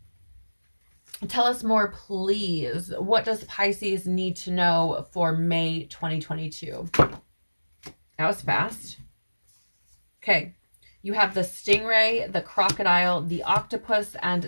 Tell us more, please. What does Pisces need to know for May 2022? That was fast. Okay. You have the stingray, the crocodile, the octopus,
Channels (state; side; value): inverted; both; correlation -1.00